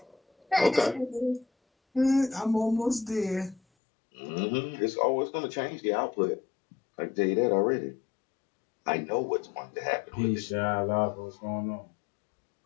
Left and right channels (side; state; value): right; drops out; at 3.6 s